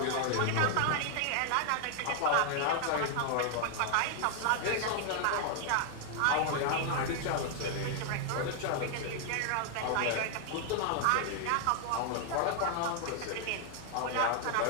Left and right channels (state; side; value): different; both; correlation 0.00